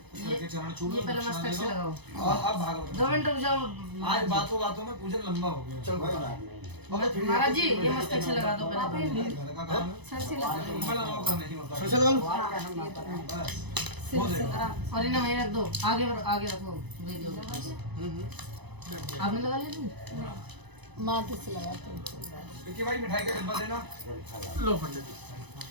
चरण छू लो। ये पहले मस्तक से लगाओ। और अब भागवत 2 मिनट रुक जाओ। आज बातों बातों में पूजन लंबा हो गया। चल भाई महाराज जी ये मस्तक से लगा दो पहले। घर का काम है, सर से लगा दो। बड़ा नौकर नहीं होता। सर से लगा लो। बस हो जाएगा। और इन्हें वहीं रख दो, आगे रखो, दे दो। आपने लगा लिया? माथे से लगाते हैं। विक्की भाई मिठाई का डिब्बा देना, लो पंडित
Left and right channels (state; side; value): late; left; 0.99 ms